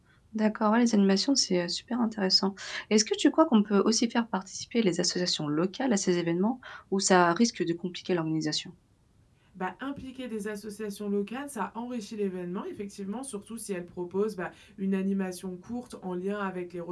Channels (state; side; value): identical; both; correlation 1.00